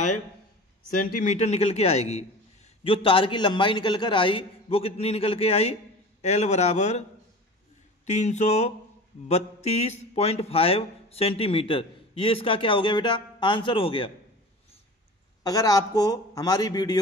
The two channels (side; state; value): both; normal; correlation 0.36